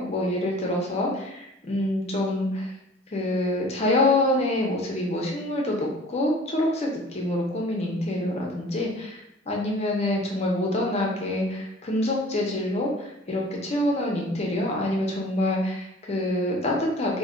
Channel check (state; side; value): normal; both; correlation 0.47